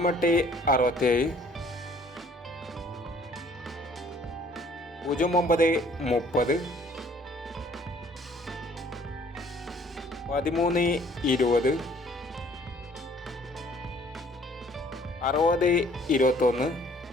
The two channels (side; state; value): both; normal; correlation 0.58